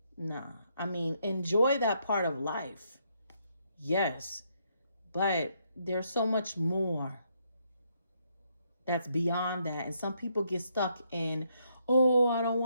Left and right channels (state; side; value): inverted; both; correlation -0.75